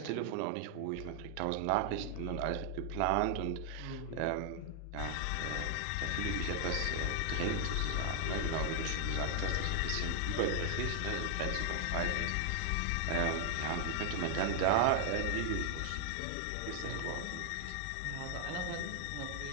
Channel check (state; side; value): different; both; correlation 0.00